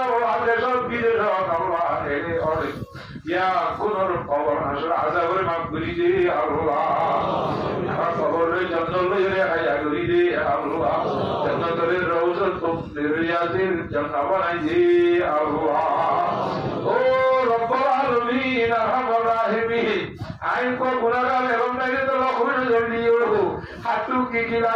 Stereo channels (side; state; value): both; identical; correlation 1.00